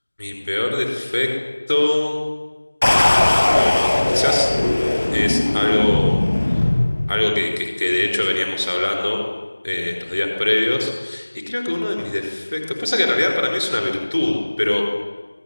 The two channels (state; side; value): inverted; both; correlation -1.00